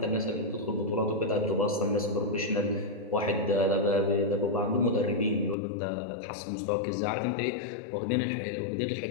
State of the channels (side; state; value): right; drops out; at 5.6 s